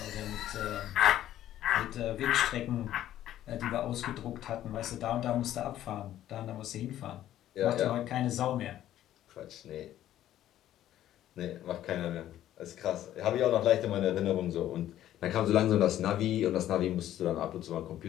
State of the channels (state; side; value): quieter; right; 12.5 dB